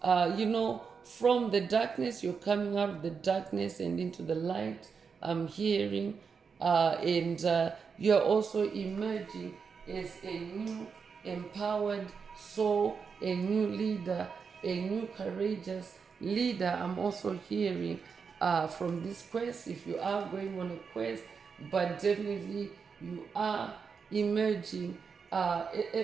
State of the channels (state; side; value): quieter; left; 5.8 dB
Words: From the darkness, you're coming out of the darkness and into the light. I'm hearing, and you're also emerging as a new empowered soul, a new leader, a new courageous leader. I'm also hearing from this quest, if you are going on a quest, but definitely you are emerging